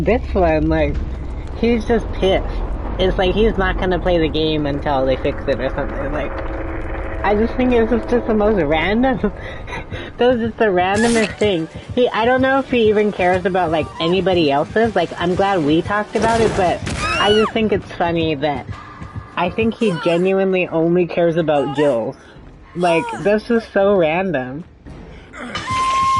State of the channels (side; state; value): both; identical; correlation 1.00